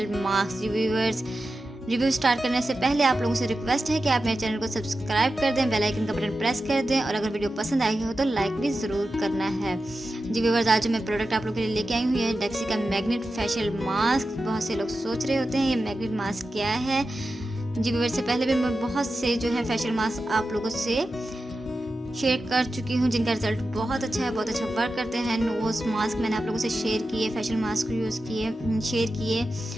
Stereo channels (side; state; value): both; normal; correlation 0.92